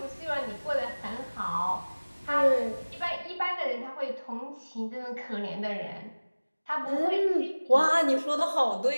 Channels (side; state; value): both; inverted; correlation -1.00